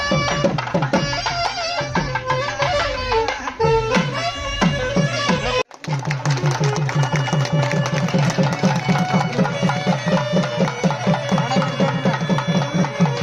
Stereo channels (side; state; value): both; identical; correlation 1.00